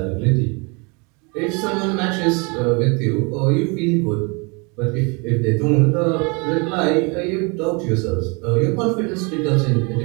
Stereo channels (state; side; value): quieter; left; 30.8 dB